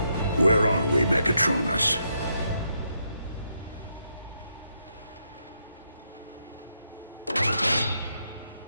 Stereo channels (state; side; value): inverted; both; correlation -0.79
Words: Where are we, Megatronus?